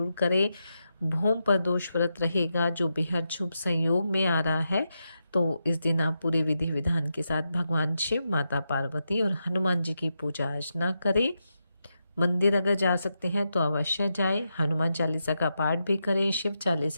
करें। भूम पर दोष व्रत रहेगा जो बेहद शुभ संयोग में आ रहा है, तो इस दिन आप पूरे विधि विधान के साथ भगवान शिव, माता पार्वती और हनुमान जी की पूजा अर्चना करें। मंदिर अगर जा सकते हैं तो अवश्य जाएं, हनुमान चालीसा का पाठ भी करें, शिव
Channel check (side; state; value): both; inverted; correlation -0.86